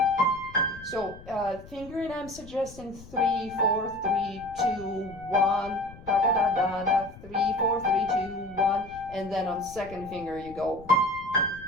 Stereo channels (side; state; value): left; noise; rumble, 18 dB below the sound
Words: So fingering, I'm suggesting 3, 4, 3, 2, 1, da da da da da, 3, 4, 3, 2, 1, and then on second finger you go.